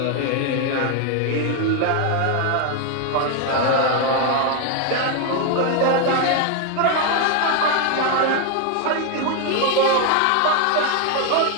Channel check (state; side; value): different; both; correlation 0.01